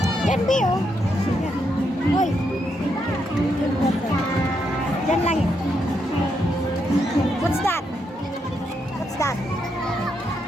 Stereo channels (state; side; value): normal; both; correlation 0.79